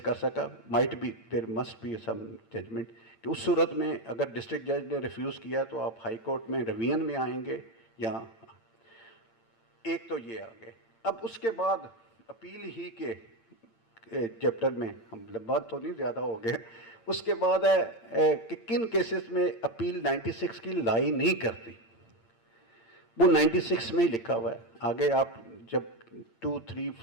सका। Might be there must be some judgment कि उस सूरत में अगर डिस्ट्रिक्ट जज ने रिफ्यूज़ किया तो आप हाई कोर्ट में रिवीजन में आएंगे या, एक तो ये आ गए। अब उसके बाद अपील ही के चैप्टर में हम लंबा तो नहीं ज़्यादा हो गए, उसके बाद है कि किन केसेस में अपील 96 की लाई नहीं करती, वो 96 में ही लिखा हुआ है। आगे आप जब 2, 3,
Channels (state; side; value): late; right; 8.8 ms